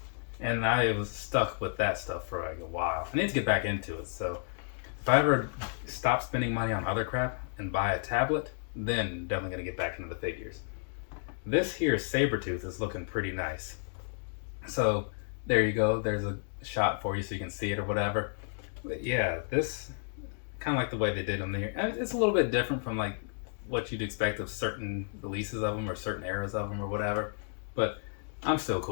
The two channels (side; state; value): right; silent; digital silence